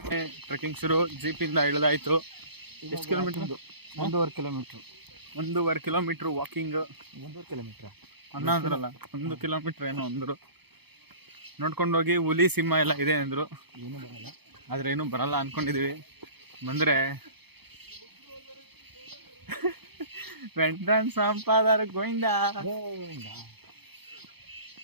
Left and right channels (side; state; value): left; late; 0.97 ms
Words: ಟ್ರೆಕ್ಕಿಂಗ್ ಶುರು. ಜೀಪಿಂದ ಇಳಿದಾಯ್ತು. ಎಷ್ಟು kilometre? 1.5 kilometre. 1.5 kilometre walking. 1.5 kilometre ಅನ್ನ ಅಂದ್ರಲ್ಲ, 1 ಕಿಲೋಮೀಟರ್ ಏನೋ ಅಂದರು. ನೋಡ್ಕೊಂಡೋಗಿ ಹುಲಿ ಸಿಂಹ ಎಲ್ಲ ಇದೆ ಅಂದರು. ಏನೂ ಬರಲ್ಲ, ಆದ್ರೆ ಏನೂ ಬರಲ್ಲ ಅನ್ಕೊಂಡಿದೀವಿ. ಬಂದ್ರೆ ವೆಂಟನ್ ಸಂಪಾದರ ಗೋವಿಂದ.